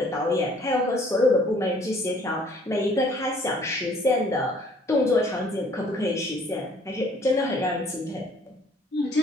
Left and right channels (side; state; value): both; normal; correlation 0.58